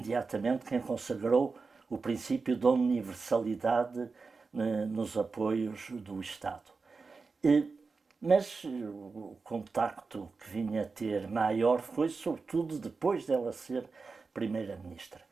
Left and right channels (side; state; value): left; quieter; 4.4 dB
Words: quem consagrou o princípio da universalidade nos apoios do Estado. Mas o contacto que vinha a ter maior foi sobretudo depois dela ser Primeira-Ministra.